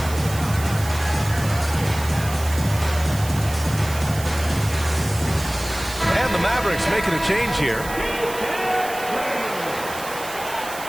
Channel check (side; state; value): right; noise; hiss, 12 dB below the sound